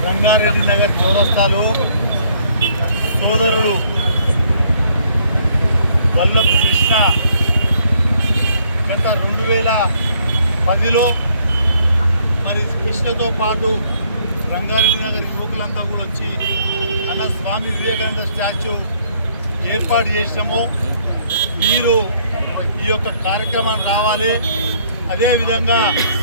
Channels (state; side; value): inverted; both; correlation -0.65